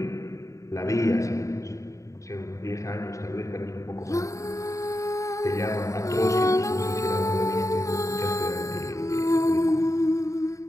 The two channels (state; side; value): late; right; 0.15 ms